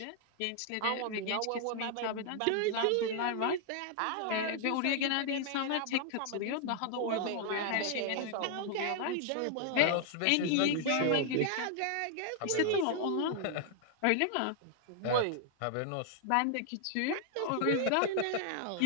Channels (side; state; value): both; different; correlation 0.00